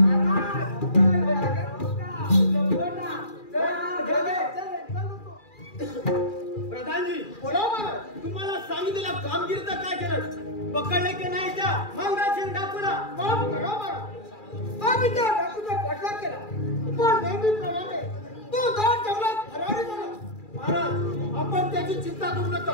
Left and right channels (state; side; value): late; right; 2.4 ms